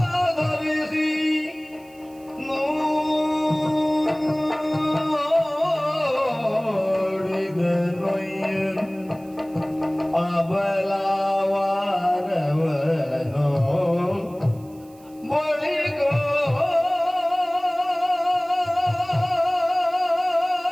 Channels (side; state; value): right; noise; hiss, 28 dB below the sound